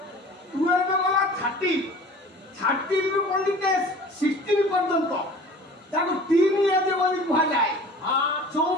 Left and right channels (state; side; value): normal; both; correlation 0.44